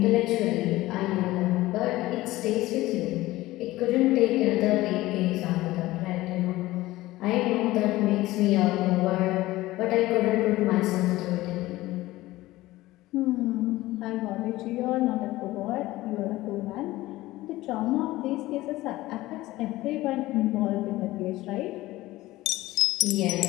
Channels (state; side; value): quieter; right; 17.6 dB